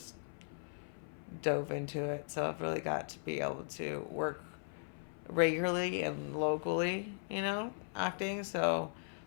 dove into it. So I've really got to be able to work regularly and locally, acting. So,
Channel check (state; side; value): silent; right; 52 dB below the other